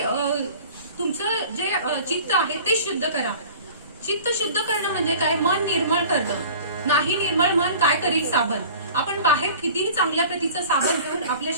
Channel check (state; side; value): inverted; both; correlation -0.43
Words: तुमचं जे चित्त आहे ते शुद्ध करा. चित्त शुद्ध करणं म्हणजे काय? मन निर्मळ करणं. नाही निर्मळ मन काय करील साबण. आपण बाहेर कितीही चांगल्या प्रतीचं साबण घेऊन आपल्या